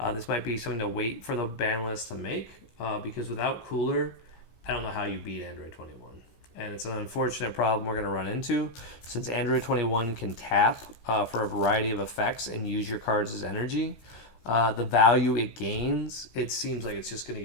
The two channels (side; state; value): right; late; 17 ms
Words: This might be something to wait for the ban list to make, because without Cooler, I don't know how you beat Android 21. And it's an unfortunate problem we're going to run into, since Android 21 can tap for a variety of effects and use your cards as energy. The value it gains, it seems like it's just going to